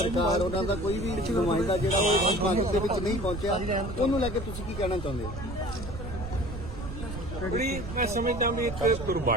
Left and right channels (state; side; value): noise; right; rumble, 8 dB below the sound